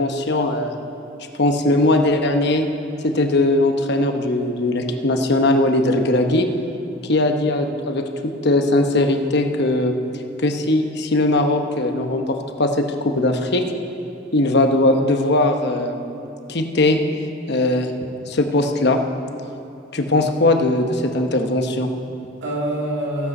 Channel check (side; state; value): both; normal; correlation 0.30